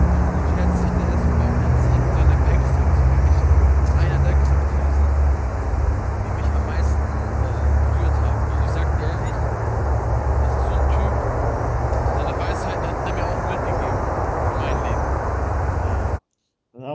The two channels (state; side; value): identical; both; correlation 1.00